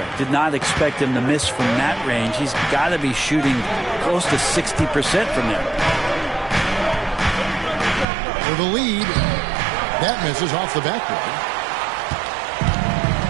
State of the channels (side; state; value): left; drops out; at 8.1 s